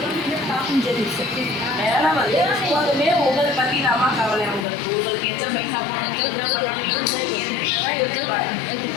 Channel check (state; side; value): drops out; right; at 4.7 s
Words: வேலை வந்து எப்போதுமே உங்களை பற்றி தாமா கவலை. உங்களுக்கு எத்தனை பைசா போடணும் என்ன பண்ணணும் யோசிப்பாங்க.